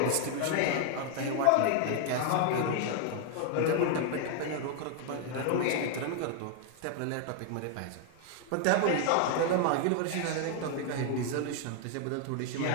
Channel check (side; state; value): both; different; correlation 0.00